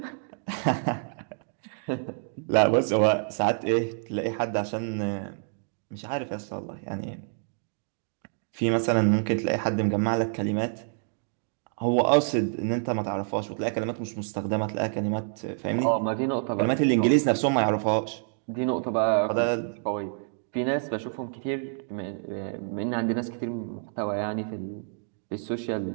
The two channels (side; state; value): left; silent; digital silence